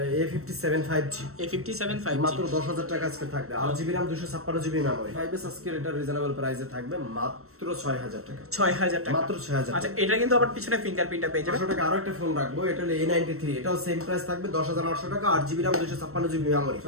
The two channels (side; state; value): left; late; 0.63 ms